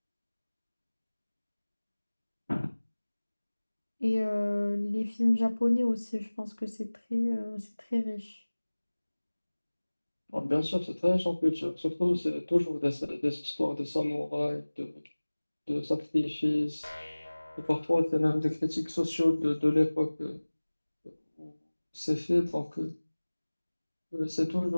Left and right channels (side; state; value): both; inverted; correlation -1.00